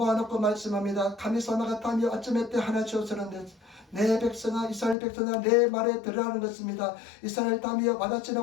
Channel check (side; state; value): right; drops out; at 5.0 s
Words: 말씀합니다. 가미사마가 타며 아침에 때 하나 주었으는데 내 백성아 이스라엘 백성아 내 말에 들으라는 것입니다. 이스라엘 타며